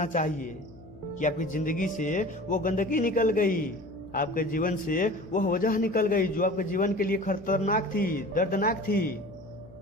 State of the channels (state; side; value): noise; left; hum, 20 dB below the sound